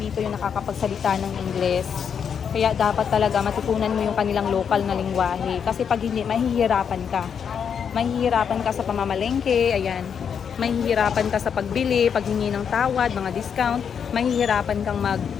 yung nakakapagsalita ng Ingles. Kaya dapat talaga matutunan mo yung kanilang lokal na lingwahe. Kasi pag hindi, mahihirapan ka. Mahihirapan ka sa pamamalengke, ayan. Mahihirapan ka sa pagbili, paghingi ng tawad, mga discount. Mahihirapan kang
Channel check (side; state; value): right; quieter; 7.3 dB